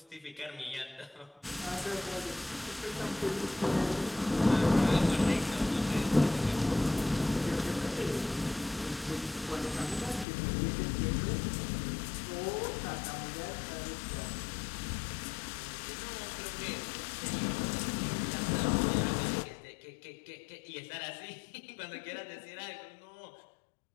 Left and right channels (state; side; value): drops out; right; at 10.2 s